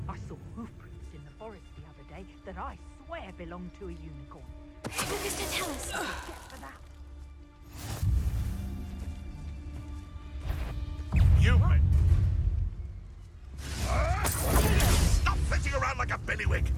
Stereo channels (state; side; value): identical; both; correlation 1.00